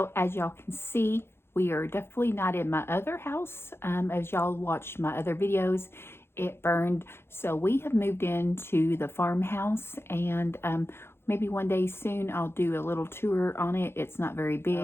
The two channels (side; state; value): right; late; 0.12 ms